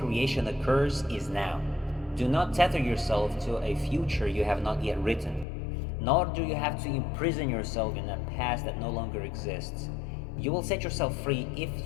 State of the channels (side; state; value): right; drops out; at 5.5 s